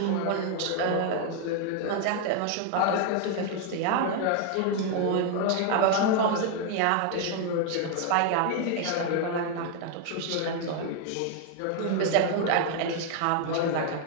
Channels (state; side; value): different; both; correlation 0.00